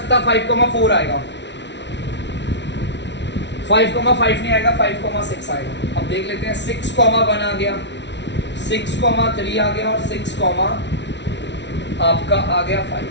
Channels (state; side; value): late; right; 0.51 ms